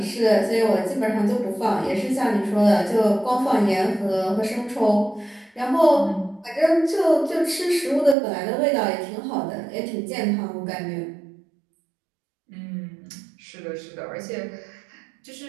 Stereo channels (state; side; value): drops out; left; at 8.2 s